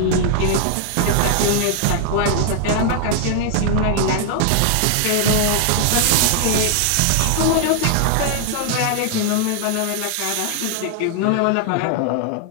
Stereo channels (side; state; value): both; different; correlation 0.00